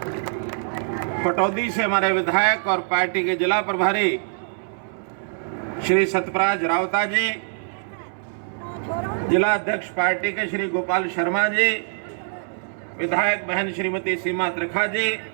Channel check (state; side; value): silent; left; 63 dB below the other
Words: पटौदी से हमारे विधायक और पार्टी के जिला प्रभारी श्री सतराज रावता जी, जिला अध्यक्ष पार्टी के श्री गोपाल शर्मा जी, विधायक बहन श्रीमती सीमा त्रिखा जी,